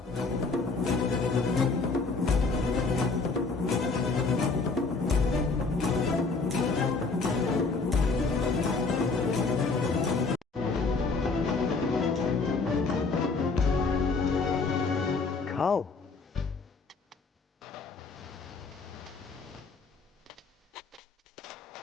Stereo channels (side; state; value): right; quieter; 4.1 dB